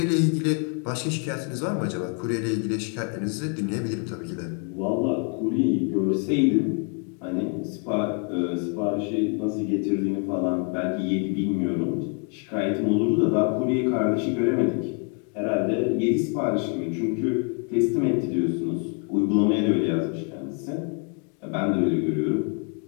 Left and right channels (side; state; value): right; quieter; 36.9 dB